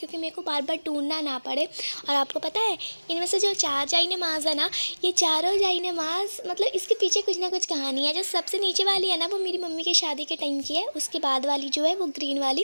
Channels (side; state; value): both; inverted; correlation -1.00